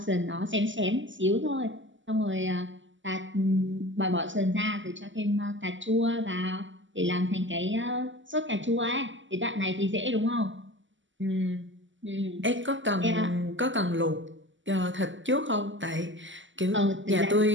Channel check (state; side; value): late; left; 0.55 ms